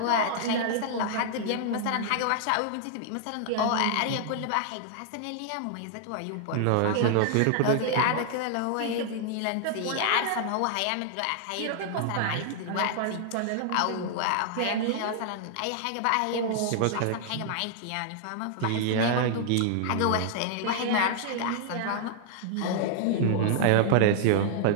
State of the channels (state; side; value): different; both; correlation -0.01